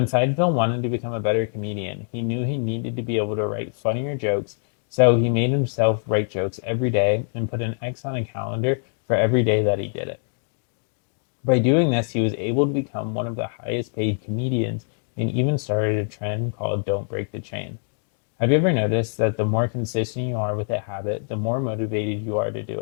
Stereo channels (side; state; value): right; silent; 55 dB below the other